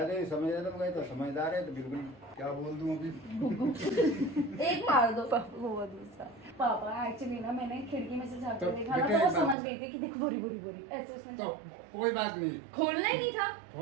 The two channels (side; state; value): left; drops out; at 9.6 s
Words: तो समझ रहा था, तो समझदार है तो बिल्कुल क्या बोल दूं अभी। एक मार दो। वो दूसरा पापा एक्चुअली ना मैंने खिड़की में से झाँक तो कर देखा ना, बेटे तो वो बात- समझ गई थी कि देख बोरी बोरी बोरी ऐसे उसमें। तो कोई बात नहीं, खोलना ही नहीं था।